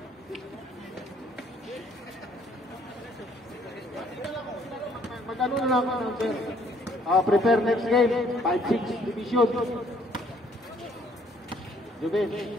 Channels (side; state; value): both; normal; correlation 0.63